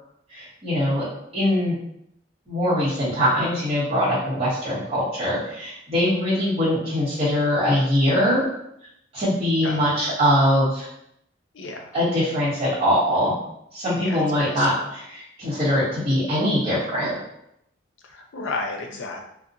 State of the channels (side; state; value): both; normal; correlation 0.43